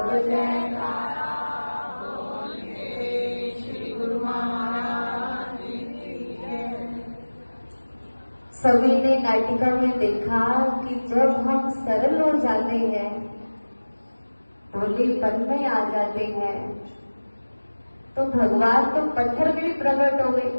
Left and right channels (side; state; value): both; inverted; correlation -1.00